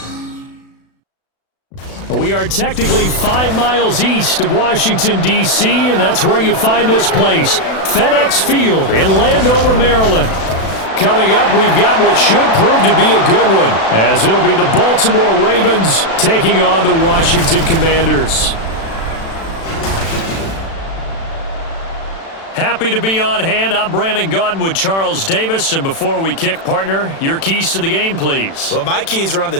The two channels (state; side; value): late; right; 36 ms